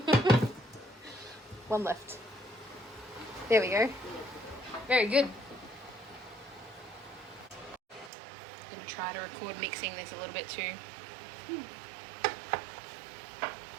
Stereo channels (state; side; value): drops out; left; at 8.1 s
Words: One left. There we go. Very good. I'm going to try to record mixing this a little bit too.